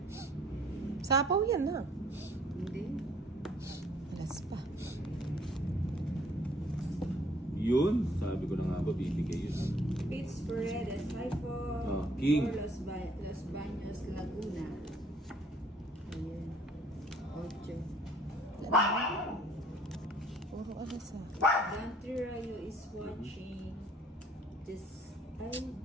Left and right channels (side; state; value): both; normal; correlation 0.59